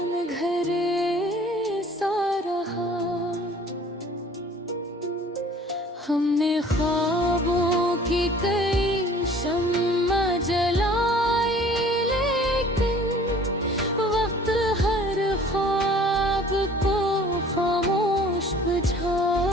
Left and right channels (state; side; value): normal; both; correlation 0.51